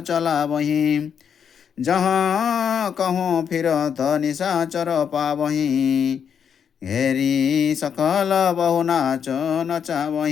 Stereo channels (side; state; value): right; quieter; 7.5 dB